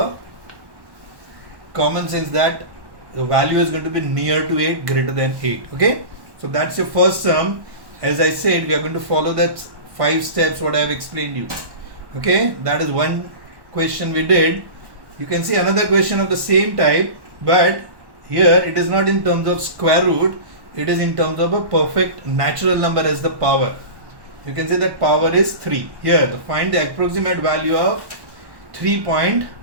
common sense that the value is going to be near to 8, greater than 8. Okay, so that's your first term. As I said, we are going to follow that 5 steps what I have explained you. Okay, that is one question we did. You can see another question of the same type, but here it is not in terms of square root, it is in terms of a perfect natural number as the power. You can say that power is 3. Here, to find the approximate value of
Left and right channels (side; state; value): left; late; 1.1 ms